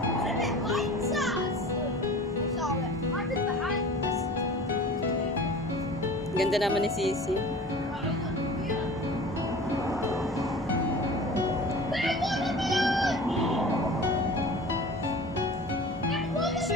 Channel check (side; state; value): both; normal; correlation 0.40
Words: What if it bites us? It's alright. What is behind us? Ganda naman ni Sisi.